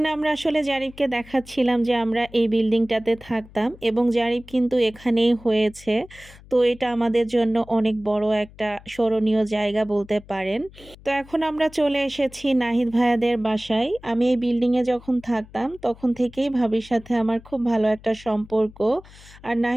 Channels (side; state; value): left; noise; hum, 22 dB below the sound